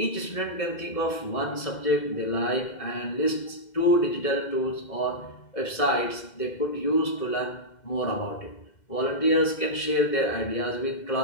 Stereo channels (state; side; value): late; right; 2.1 ms